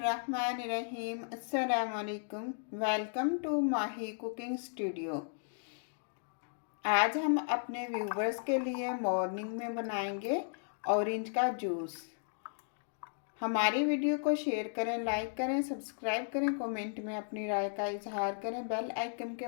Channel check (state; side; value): silent; right; digital silence